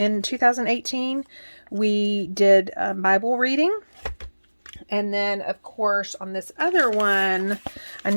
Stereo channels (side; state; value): both; inverted; correlation -1.00